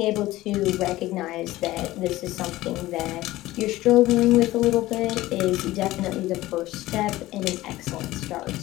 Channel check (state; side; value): quieter; right; 17.0 dB